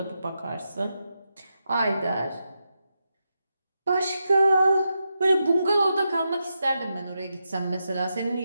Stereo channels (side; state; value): both; inverted; correlation -0.87